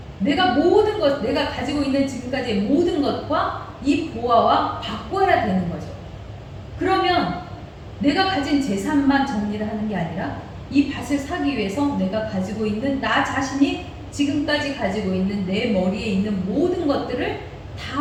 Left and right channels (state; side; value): identical; both; correlation 1.00